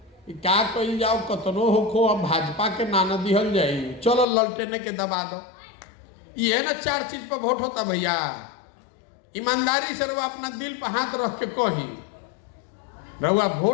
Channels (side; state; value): right; drops out; at 4.2 s